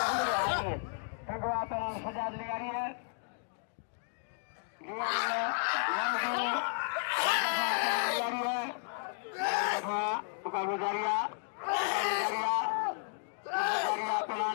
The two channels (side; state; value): right; silent; digital silence